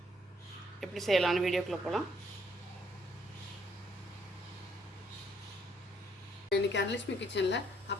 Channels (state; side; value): normal; both; correlation 0.67